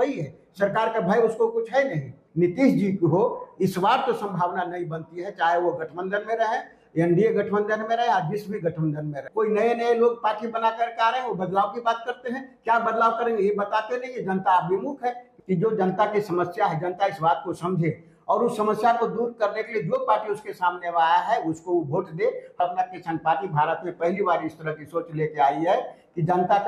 है, सरकार का भय उसको कुछ है नहीं। नीतीश जी को इस बार तो संभावना नहीं बनती है, चाहे वो गठबंधन में रहे, एनडीए गठबंधन में रहे या जिस भी गठबंधन में रहे। कोई नए नए लोग पार्टी बना करके आ रहे हैं, वो बदलाव की बात करते हैं। क्या बदलाव करेंगे ये बताते नहीं है। जनता अभिमुख है कि जो जनता की समस्या है, जनता इस बात को समझे और उस समस्या को दूर करने के लिए जो पार्टी उसके सामने आया है उसको वो वोट दे। अपना किसान पार्टी भारत में पहली बार इस तरह की सोच लेके आई है कि जनता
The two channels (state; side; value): identical; both; correlation 1.00